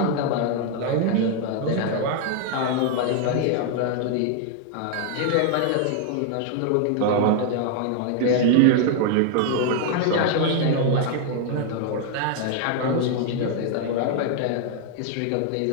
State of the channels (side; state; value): both; different; correlation 0.00